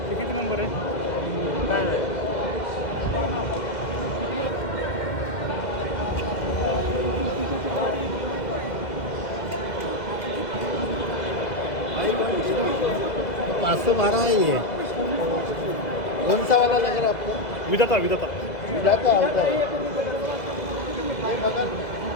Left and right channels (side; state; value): right; late; 2.1 ms